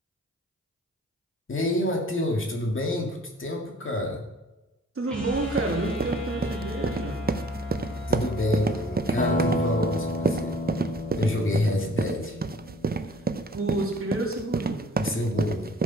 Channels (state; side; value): normal; both; correlation 0.52